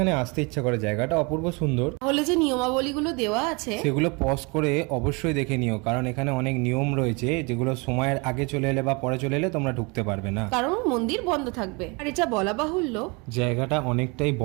আসতে ইচ্ছা করে, জায়গাটা অপূর্ব সুন্দর, তাহলে যে নিয়মাবলীগুলো দেওয়া আছে সেগুলো পজ করে অবশ্যই দেখে নিও, কারণ এখানে অনেক নিয়ম রয়েছে যেগুলো সময়ের আগে চলে এলে বা পরে চলে এলে তোমরা ঢুকতে পারবে না, কারণ মন্দির বন্ধ থাকবে। আর এটা বলা বাহুল্য, জায়গাটা অনেকটাই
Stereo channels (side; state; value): left; quieter; 29.1 dB